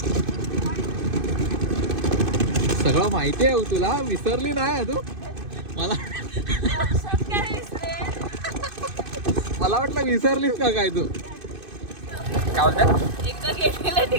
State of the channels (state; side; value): late; left; 2.5 ms